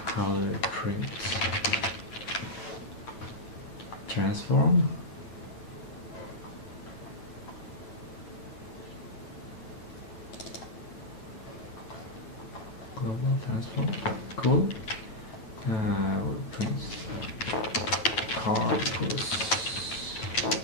do I print? Transform. Global transform. Cool. We'll print car plus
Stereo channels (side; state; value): right; late; 9.1 ms